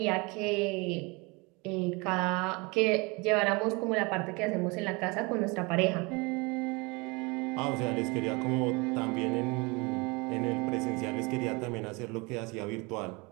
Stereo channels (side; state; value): left; quieter; 27.3 dB